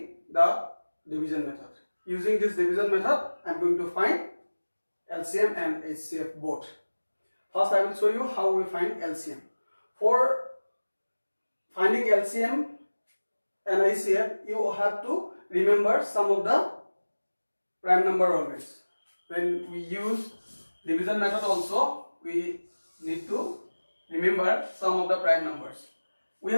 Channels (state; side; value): inverted; both; correlation -1.00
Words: the division method. Using this division method I am going to find LCM and HCF both. First I will show you how we find LCM. For finding LCM and HCF you have to remember some of the prime number always. When we use division method also we need to remember some of the prime numbers. We